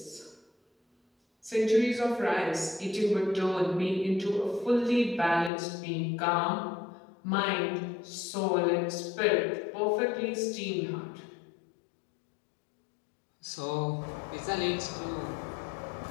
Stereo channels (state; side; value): drops out; right; at 5.5 s